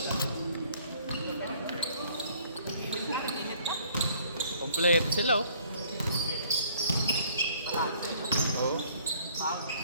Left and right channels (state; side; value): inverted; both; correlation -0.59